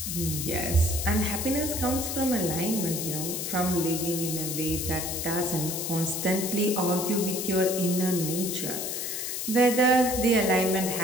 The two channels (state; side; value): noise; left; hiss, 3 dB below the sound